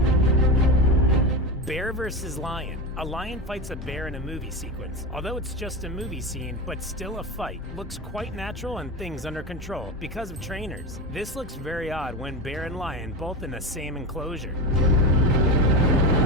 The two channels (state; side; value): normal; both; correlation 0.22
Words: Bear versus lion. A lion fights a bear in a movie sequence. Although it's just a movie scene, but still a fight. Looks quite natural and things under control because of trainers. This looks very odd when bear and lion both in the same enclosure.